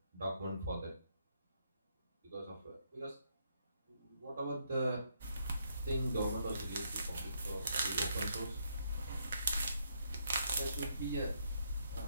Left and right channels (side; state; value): both; inverted; correlation -0.74